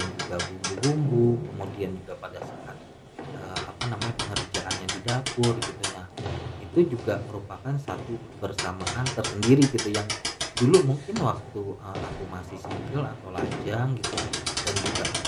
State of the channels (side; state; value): both; identical; correlation 1.00